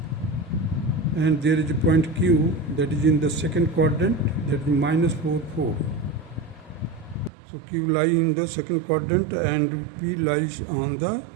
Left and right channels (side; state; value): left; drops out; at 7.3 s